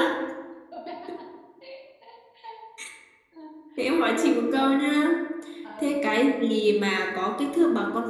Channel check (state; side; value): identical; both; correlation 1.00